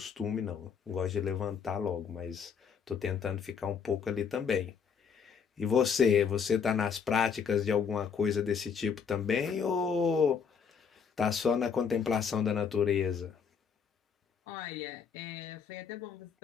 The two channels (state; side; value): quieter; right; 6.6 dB